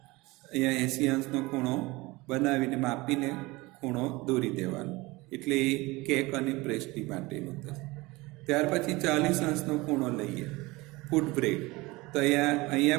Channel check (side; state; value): left; quieter; 22.1 dB